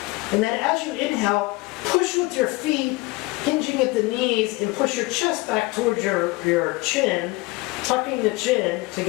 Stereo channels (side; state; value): right; quieter; 22.7 dB